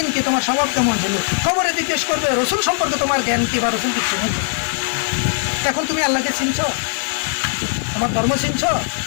কি, তোমার স্বভাব কেমন ছিল। খবরে জিজ্ঞেস করবে রসুল সম্পর্কে তোমার জ্ঞান কি বা রসুলকে চিনি। এখন তুমি আল্লাহকে চিনছ, তোমার ধর্ম চিনছ,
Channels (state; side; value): silent; right; digital silence